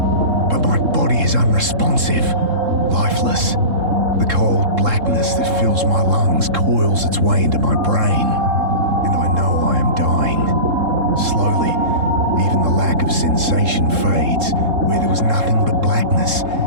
But my body is unresponsive, lifeless. The cold blackness that fills my lungs coils its way into my brain, and I know I am dying. Slowly, even the lack of sensation fades. Where there was nothing but blackness,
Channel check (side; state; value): left; late; 3.7 ms